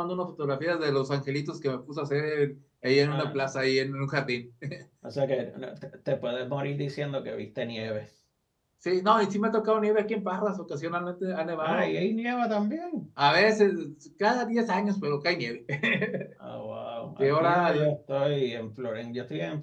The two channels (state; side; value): identical; both; correlation 1.00